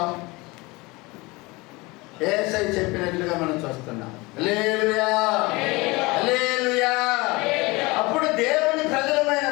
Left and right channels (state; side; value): quieter; right; 23.7 dB